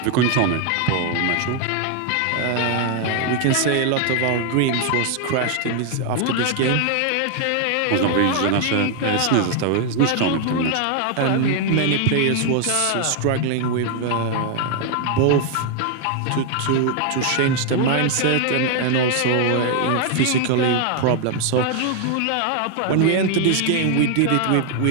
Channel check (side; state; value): both; different; correlation 0.00